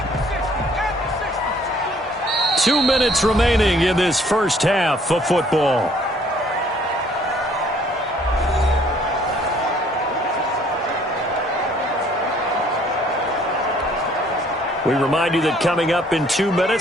Two minutes remaining in this first half of football. We remind you that coming up in 2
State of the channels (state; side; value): normal; both; correlation 0.60